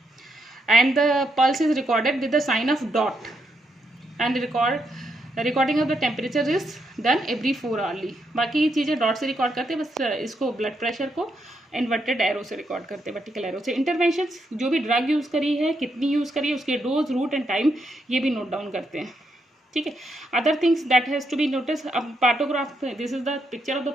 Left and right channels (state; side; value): normal; both; correlation 0.79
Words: and the pulse is recorded with the sign of dot, and recording of the temperature is done every 4 hourly. बाकी चीज़ें dot से record करते हैं, बस इसको blood pressure को inverted arrow से record करते हैं, वर्टिकल एरो से. इंटरवेंशंस, जो भी ड्रग यूज़ करी है, कितनी यूज़ करी है, उसके डोज, रूट एंड टाइम, ये भी नोट डाउन करते हैं. ठीक है. Other things that has to be notice. अब partograph, this is the picture of the